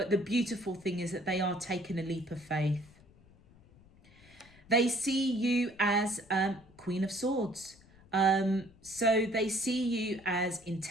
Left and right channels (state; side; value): noise; left; rumble, 26 dB below the sound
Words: the beautiful thing is that they are taking a leap of faith. They see you as Queen of Swords. So they see you as